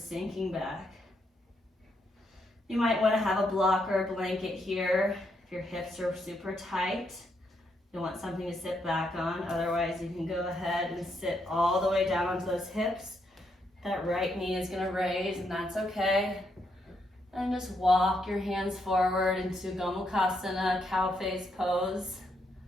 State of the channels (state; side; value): normal; both; correlation 0.78